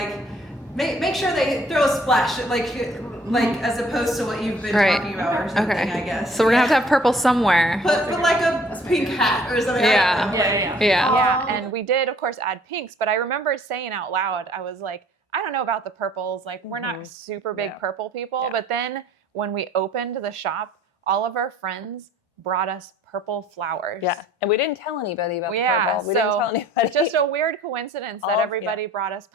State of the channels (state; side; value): normal; both; correlation 0.56